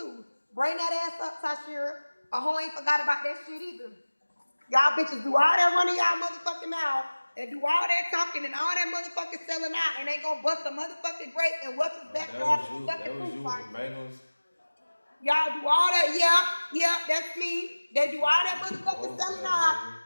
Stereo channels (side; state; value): both; inverted; correlation -1.00